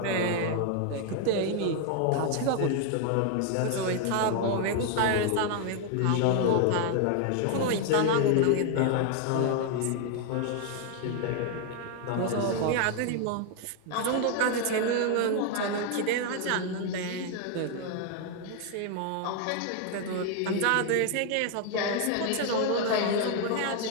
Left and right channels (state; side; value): different; both; correlation 0.00